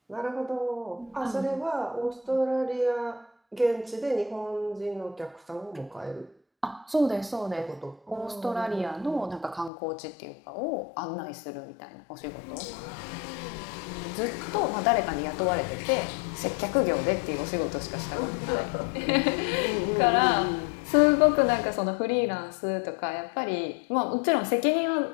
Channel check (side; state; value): right; drops out; at 9.7 s